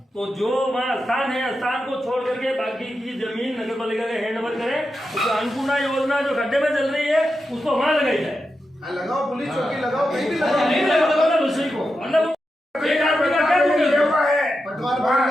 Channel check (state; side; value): normal; both; correlation 0.88